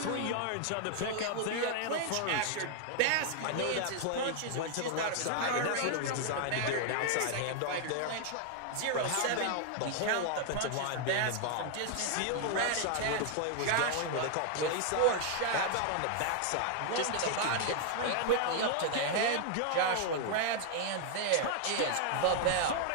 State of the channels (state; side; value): different; both; correlation 0.00